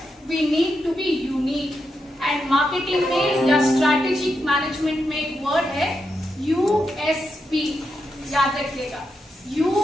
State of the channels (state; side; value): normal; both; correlation 0.85